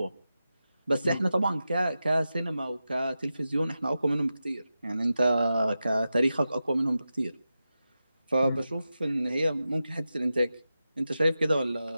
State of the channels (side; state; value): both; inverted; correlation -0.92